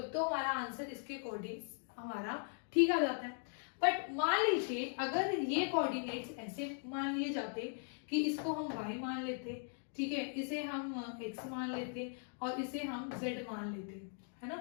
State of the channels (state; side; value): silent; right; 52 dB below the other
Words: तो हमारा आंसर इसके अकॉर्डिंग हमारा ठीक आ जाता है। बट मान लीजिए अगर ये कोऑर्डिनेट्स ऐसे मान लिए जाते कि इसको हम y मान लेते, ठीक है, इसे हम x मान लेते और इसे हम z मान लेते, है ना।